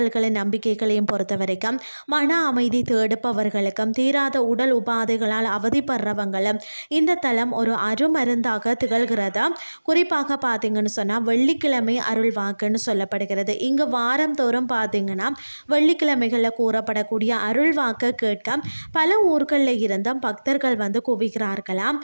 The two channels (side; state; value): both; inverted; correlation -1.00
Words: நம்பிக்கைகளையும் பொறுத்த வரைக்கும் மன அமைதி தேடுப்பவர்களுக்கும் தீராத உடல் உபாதைகளால் அவதிப்படுறவங்களும் இந்த தலம் ஒரு அருமருந்து திகழ்கிறது. குறிப்பாக பார்த்தீங்கன்னு சொன்னால் வெள்ளிக்கிழமை அருள் வாக்குன்னு சொல்லப்படுகிறது. இங்கு வாரம் தோறும் பார்த்தீங்கன்னா வெள்ளிக்கிழமைகளில் கூறப்படக்கூடிய அருள் வாக்கு கேட்க பல ஊர்களில் இருந்தும் பக்தர்கள் குவிக்கிறார்களாம்.